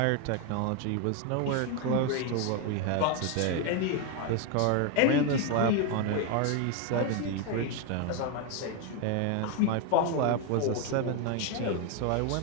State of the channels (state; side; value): different; both; correlation 0.01